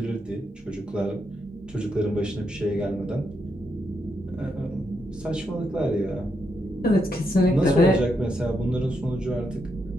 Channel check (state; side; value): normal; both; correlation 0.81